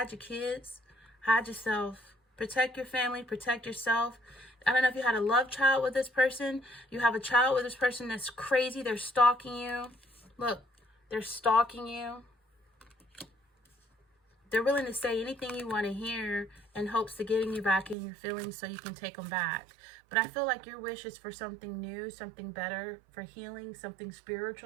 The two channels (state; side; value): drops out; left; at 17.9 s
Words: your kids, hide yourself. Protect your family, protect yourself. I don't know if you had a love child with this person. You have a child with this person that's crazy. They're stalking you. Look, they're stalking you. They're willing to say anything you want to hear in hopes of getting you back in your feelings so you can take them back. But I feel like your wish is for something new, something better, for healing, something